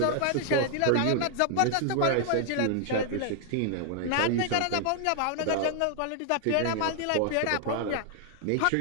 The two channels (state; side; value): different; both; correlation 0.00